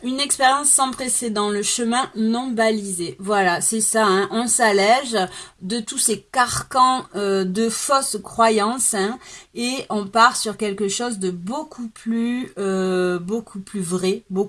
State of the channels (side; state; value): both; identical; correlation 1.00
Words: expérience sans précédent, le chemin non balisé. Voilà, c'est ça. Hein. On s'allège de tous ces carcans de fausses croyances hein, et on part sur quelque chose de beaucoup plus vrai,